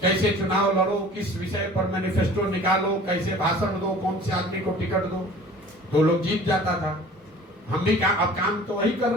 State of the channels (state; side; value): normal; both; correlation 0.46